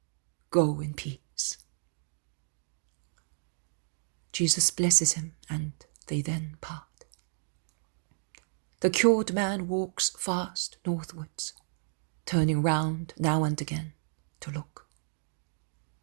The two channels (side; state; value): left; silent; digital silence